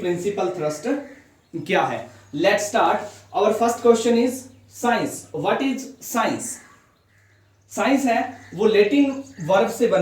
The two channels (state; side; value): identical; both; correlation 1.00